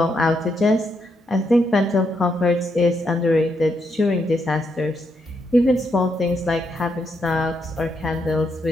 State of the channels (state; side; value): normal; both; correlation 0.79